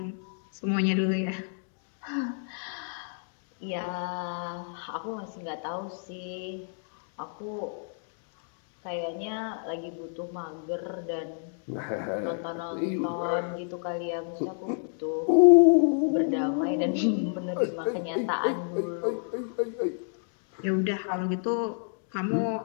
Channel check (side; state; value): right; silent; 58 dB below the other